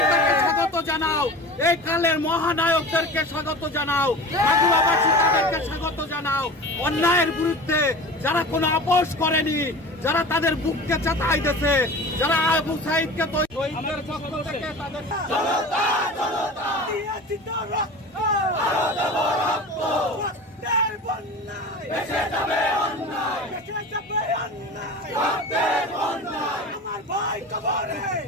তাকে স্বাগত জানাও। এই কালের মহানায়কদেরকে স্বাগত জানাও, মাগুরাবাসী তাদেরকে স্বাগত জানাও। অন্যায়ের বিরুদ্ধে যারা কোনো আপোষ করেনি, যারা তাদের বুককে চাতাই দিয়েছে, যারা আবু সাইদকে শহীদদের পক্ষ থেকে তাদের আমার ভাই কবরে,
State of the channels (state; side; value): normal; both; correlation 0.35